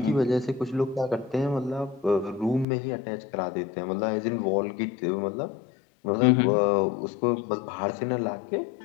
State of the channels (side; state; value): right; drops out; at 2.7 s